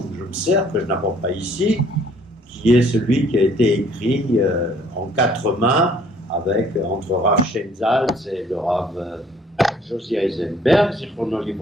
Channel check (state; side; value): normal; both; correlation 0.60